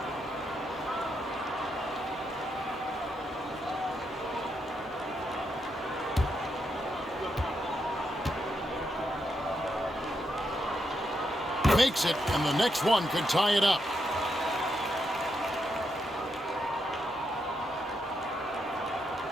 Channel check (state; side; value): normal; both; correlation 0.81